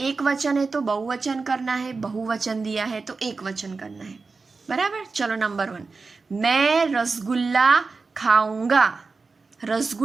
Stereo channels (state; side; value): quieter; left; 4.3 dB